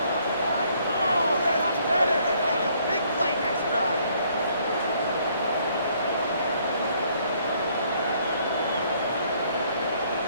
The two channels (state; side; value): inverted; both; correlation -0.65